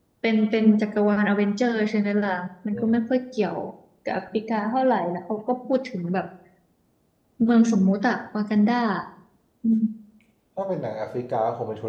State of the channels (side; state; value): both; identical; correlation 1.00